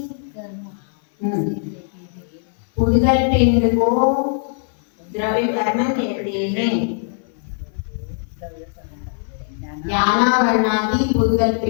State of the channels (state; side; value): silent; right; 59 dB below the other